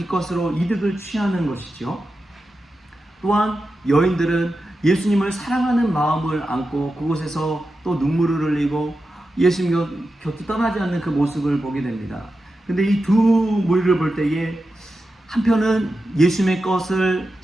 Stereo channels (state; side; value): normal; both; correlation 0.91